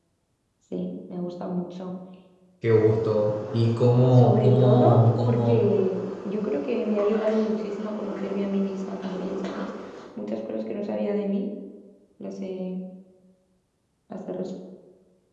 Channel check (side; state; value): both; identical; correlation 1.00